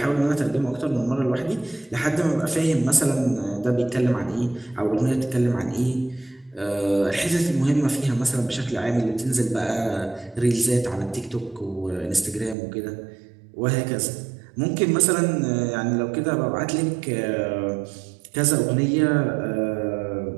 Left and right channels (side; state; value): left; drops out; at 12.6 s